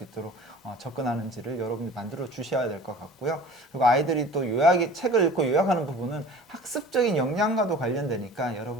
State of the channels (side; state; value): both; normal; correlation 0.43